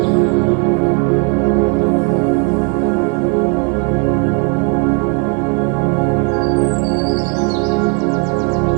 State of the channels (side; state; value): left; quieter; 36.6 dB